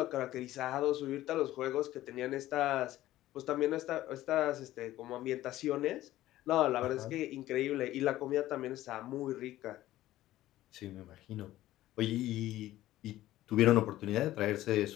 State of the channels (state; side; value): quieter; right; 15.0 dB